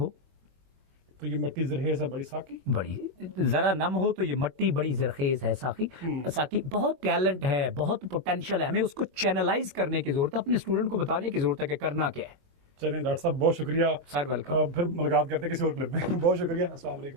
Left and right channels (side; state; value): left; late; 22 ms